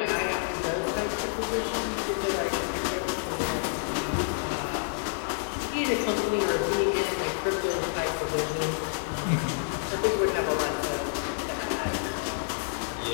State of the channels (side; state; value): right; silent; digital silence